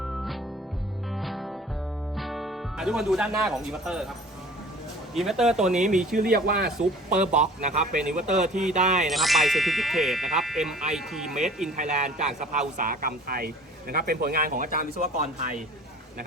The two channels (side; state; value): both; normal; correlation 0.47